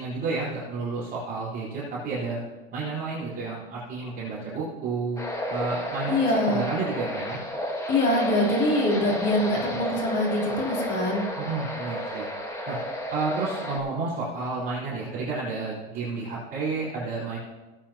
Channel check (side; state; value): both; normal; correlation 0.27